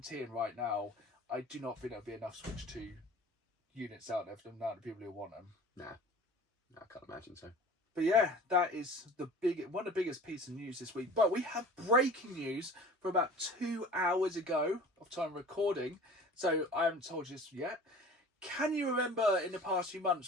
right now, I do not think there'll be enough Switch 2 units out there for the amount of people who want them. Nah, I can't imagine so. But yeah, that is one of the biggest pieces of news this week. But we have breaking news from about 2 hours ago of time recording. So I haven't told you this yet. Can you remember in the past few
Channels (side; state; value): both; normal; correlation 0.43